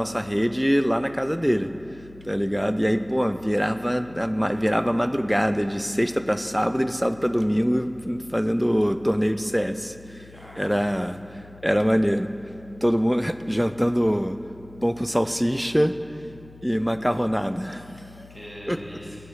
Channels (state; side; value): noise; left; hum, 22 dB below the sound